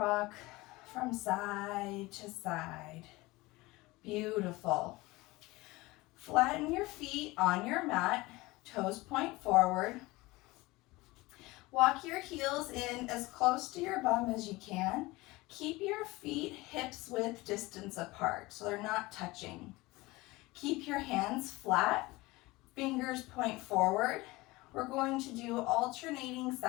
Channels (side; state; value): right; quieter; 21.2 dB